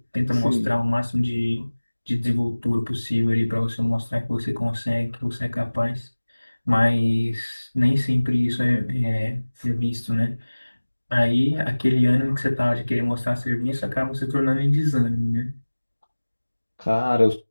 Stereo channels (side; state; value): both; inverted; correlation -1.00